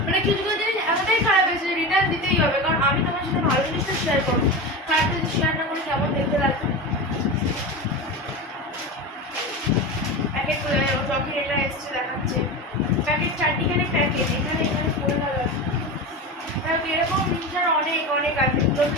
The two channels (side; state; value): both; normal; correlation 0.24